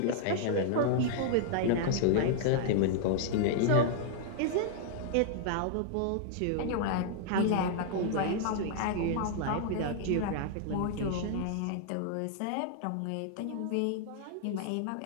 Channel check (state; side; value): different; both; correlation 0.00